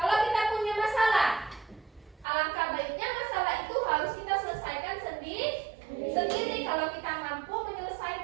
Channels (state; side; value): drops out; left; at 2.2 s